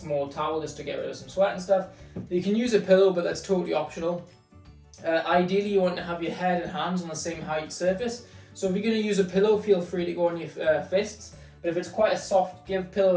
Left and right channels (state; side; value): identical; both; correlation 1.00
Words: towel just to get rid of some sweat and stuff. You can use a pillow, but that's totally optional. Ideally, you want to have your head and hands on the same height surface. So if you're going to use a pillow, feel free to go on your fists. But if it's quite a soft give pillow